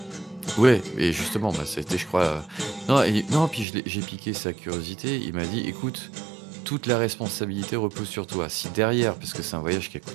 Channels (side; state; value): left; drops out; at 3.7 s